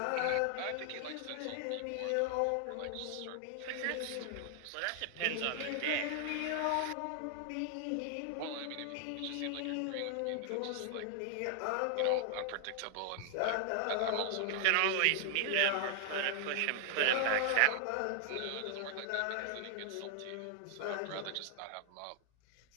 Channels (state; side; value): different; both; correlation 0.00